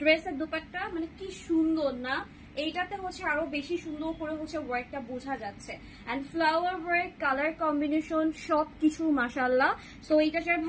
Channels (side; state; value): both; identical; correlation 1.00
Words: ড্রেসের দোপাট্টা মানে কি সুন্দর না, এইটাতে হচ্ছে আরো বেশি সুন্দর করে হচ্ছে ওয়ার্কটা বোঝা যাচ্ছে। And flower work, colour combination সবকিছু মাশাআল্লাহ। সো এইটা যার